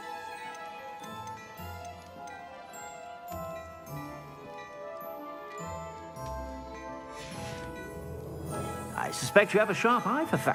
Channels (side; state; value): both; identical; correlation 1.00